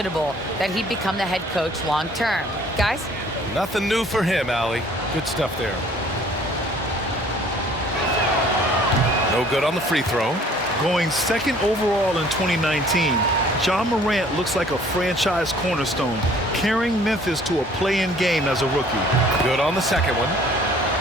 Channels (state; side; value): normal; both; correlation 0.55